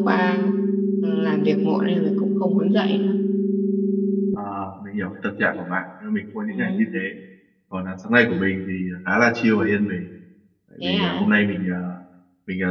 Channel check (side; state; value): both; identical; correlation 1.00